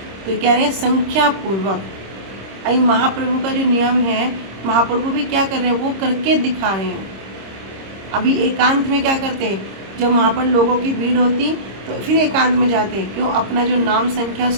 तो कह रहे हैं संख्या पूर्वक। अभी महाप्रभु का जो नियम है, महाप्रभु भी क्या कर रहे हैं? वो करके दिखा रहे हैं। अभी एकांत में क्या करते हैं? जब वहाँ पर लोगों की भीड़ होती तो फिर एकांत में जाते, क्यों? अपना जो नाम संख्या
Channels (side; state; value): left; late; 26 ms